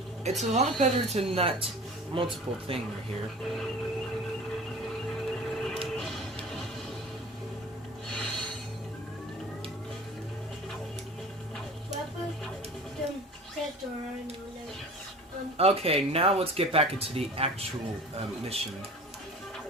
It's a lot better than that multiple thing right here. Weapon? Don't set the rhino. Okay, now let's get back into the actual mission.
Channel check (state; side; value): normal; both; correlation 0.41